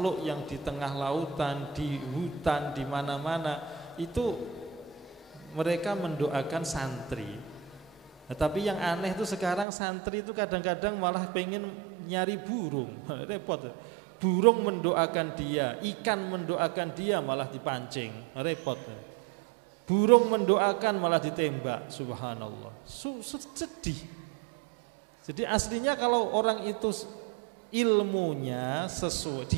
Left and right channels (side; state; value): left; drops out; at 9.7 s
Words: yang di tengah lautan, di hutan, di mana-mana itu mereka mendoakan santri. Tapi yang aneh itu sekarang santri itu kadang-kadang malah pengen nyari burung, repot. Burung mendoakan dia, ikan mendoakan dia malah dipancing, repot. Burung mendoakan malah ditembak, subhanallah. Sedih. Jadi aslinya kalau orang itu ilmunya sesuai